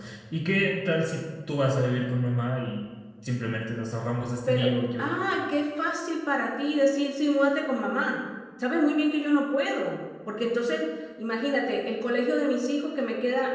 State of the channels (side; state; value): both; identical; correlation 1.00